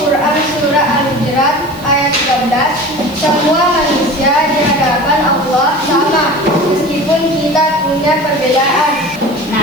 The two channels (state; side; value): noise; right; hiss, 21 dB below the sound